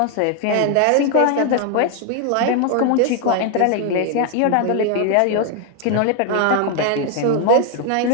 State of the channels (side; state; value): both; different; correlation 0.00